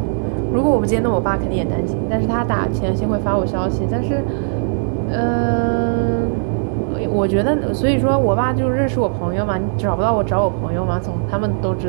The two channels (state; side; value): silent; left; digital silence